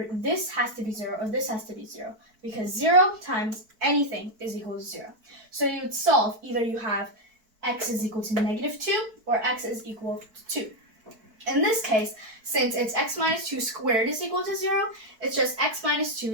this has to be 0 or this has to be 0, because 0 times anything is equal to 0. So you would solve, either you have x is equal to negative 2 or x is equal to 2. In this case, since it's x minus 2 squared is equal to 0, it's just x minus 2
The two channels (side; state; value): left; late; 4.5 ms